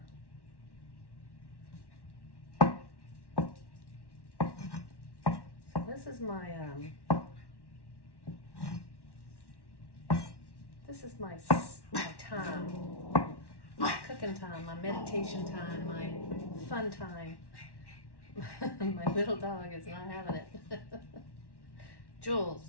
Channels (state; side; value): late; right; 1.1 ms